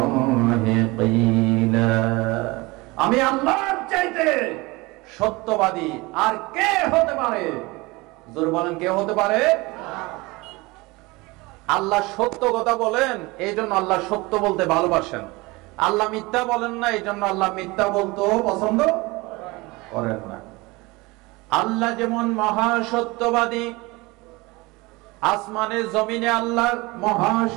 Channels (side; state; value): left; quieter; 23.3 dB